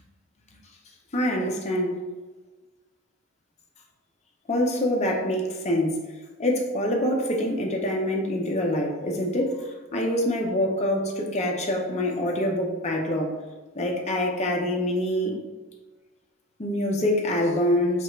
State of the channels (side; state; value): both; normal; correlation 0.31